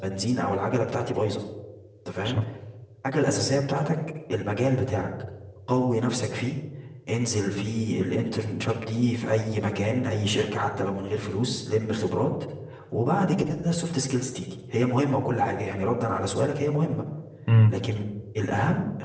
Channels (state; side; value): identical; both; correlation 1.00